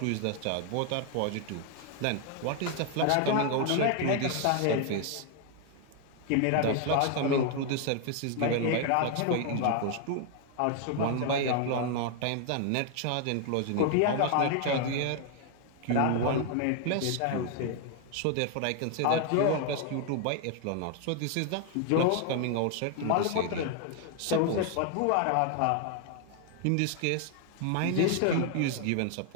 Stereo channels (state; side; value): different; both; correlation 0.00